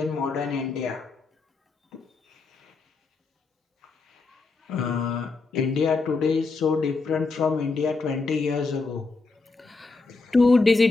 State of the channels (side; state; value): right; quieter; 4.0 dB